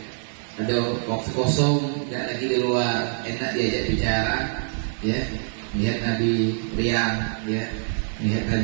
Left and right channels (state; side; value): silent; left; digital silence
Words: Ada waktu kosong, tidak lagi di luar, enak diajak bicara, ya. Melihat Nabi riang, ya. Melihat